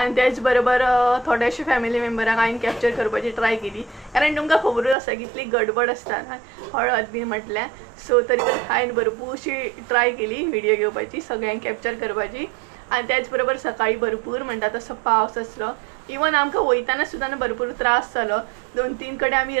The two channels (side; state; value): left; drops out; at 5.0 s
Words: तेच बरोबर थोडेशे फॅमिली मेंबरांक हांवें कॅप्चर करपाची ट्राय केली. कारण तुमकां खबरूच आसा कितली गडबड आसता ना हळद बी म्हटल्यार. सो तरी पण हांवें भरपूरशी ट्राय केली व्हिडियो घेवपाची, सगळ्यांक कॅप्चर करपाची. आनी त्याच बरोबर सकाळी भरपूर म्हणटा तसो पावस आसलो. इवन आमकां वयताना सुद्दां भरपूर त्रास जालो. 2-3 कडेन आमी